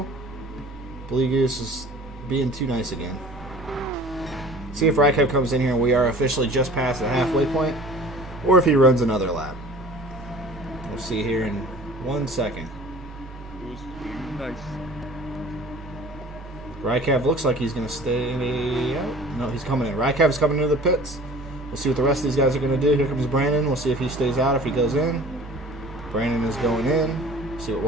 Blee Goose is being too nice again. See if Rykev comes in here and we are officially just past the halfway point, or if he runs another lap. We'll see here in 1 second. It was nice. Rykev looks like he's going to stay out. No, he's coming in. Rykev's coming into the pits. We'll see what the rest of these guys are going to do. Here comes Brandon. We'll see if he stays out, if he goes in. Brandon is going in. See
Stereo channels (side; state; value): both; normal; correlation 0.45